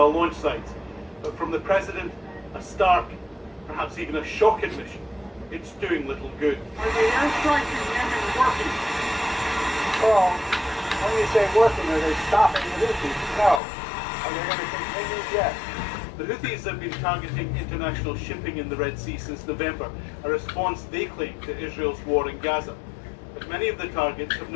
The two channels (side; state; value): right; drops out; at 13.6 s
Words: launch sites. But from the president, a stark, perhaps even a shock admission, it's doing little good. Are the airstrikes in Yemen working? Well, when you say working, are they stopping the Houthis? No. Are they going to continue? Yes. The Houthis have been targeting international shipping in the Red Sea since November, a response they claim to Israel's war in Gaza. But many of the targets have